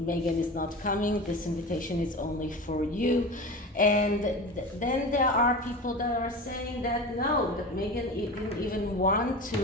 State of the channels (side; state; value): both; normal; correlation 0.30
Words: is not coming. This invitation is only for you." And then there are people that are saying that no, that Meghan didn't even want